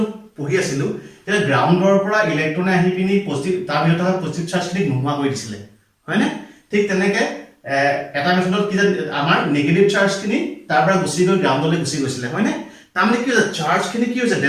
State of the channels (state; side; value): identical; both; correlation 1.00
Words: পঢ়ি আছিলো, এটা গ্ৰাউণ্ডৰ পৰা ইলেক্ট্ৰনে আহি পিনি পজিটিভ তাৰ ভিতৰত থকা পজিটিভ চাৰ্জখিনি নোহোৱা কৰি দিছিলে, হয় না? ঠিক তেনেকে এটা মেথডত কি যে আমাৰ নেগেটিভ চাৰ্জখিনি তাৰ পৰা গুচি গৈ গ্ৰাউণ্ডলৈ গুচি গৈছিলে, হয় না? তাৰমানে কি হৈছে চাৰ্জখিনি কি হৈছে